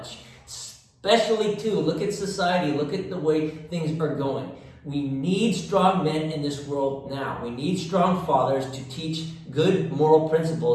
Especially too, look at society, look at the way things are going. We need strong men in this world now. We need strong fathers to teach good moral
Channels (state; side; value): identical; both; correlation 1.00